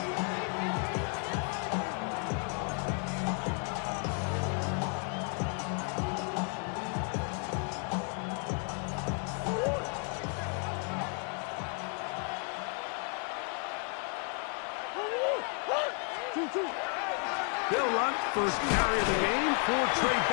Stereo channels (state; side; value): quieter; right; 39.7 dB